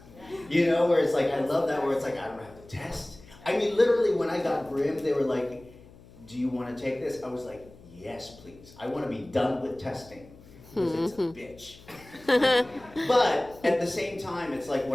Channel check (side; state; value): left; noise; hum, 22 dB below the sound